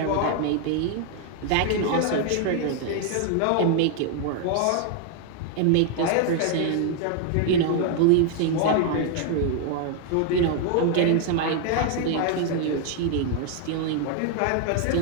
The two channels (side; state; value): both; different; correlation 0.00